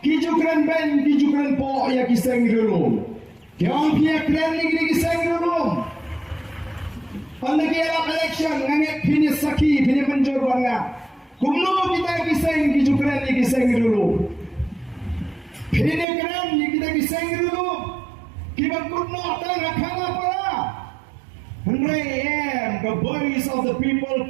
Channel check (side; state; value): left; drops out; at 16.1 s